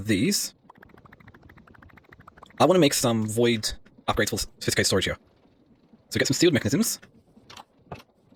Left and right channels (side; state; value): both; identical; correlation 1.00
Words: these, I want to make some void upgrades for sophisticated storage here. So get some sealed mechanisms.